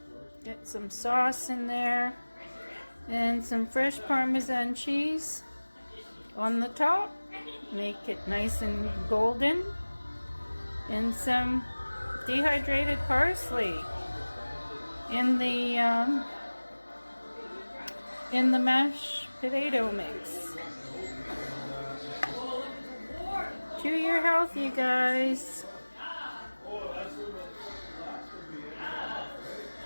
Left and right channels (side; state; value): both; inverted; correlation -1.00